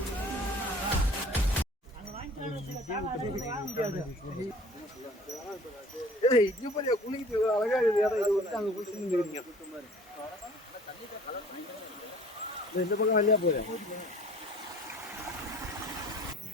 இந்த பக்கம் வழியா போயிரு.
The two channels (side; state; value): both; normal; correlation 0.48